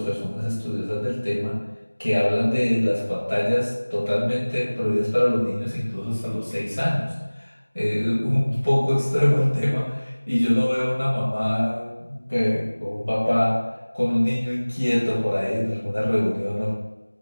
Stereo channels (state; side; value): inverted; both; correlation -1.00